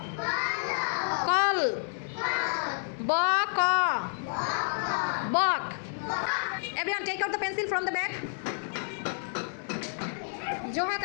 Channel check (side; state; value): right; silent; 58 dB below the other